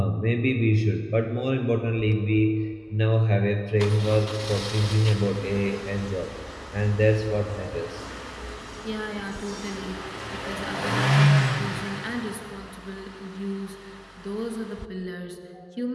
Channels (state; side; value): identical; both; correlation 1.00